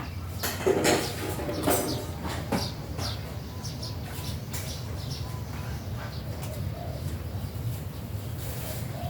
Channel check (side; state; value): both; identical; correlation 1.00